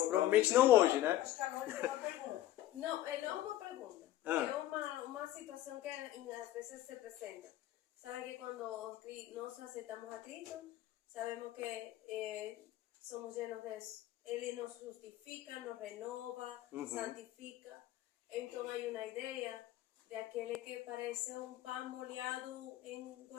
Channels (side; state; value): right; quieter; 14.0 dB